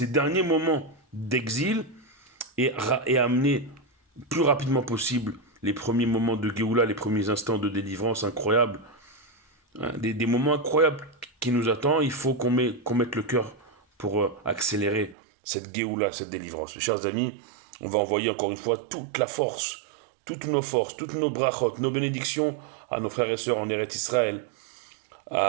derniers moments d'exil et amener plus rapidement possible les premiers moments de Géoula, les premiers instants de délivrance incroyables, hein, des moments incroyables qui nous attendent. Il faut qu'on mette le cœur pour accélérer cette Géoula, cette délivrance. Mes chers amis, on va envoyer encore une fois toute la force, toutes nos forces, toutes nos brachot, nos bénédictions à nos frères et sœurs en Eretz Israël,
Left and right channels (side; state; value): left; drops out; at 15.2 s